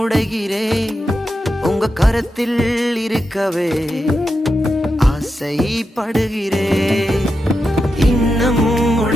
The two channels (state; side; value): normal; both; correlation 0.88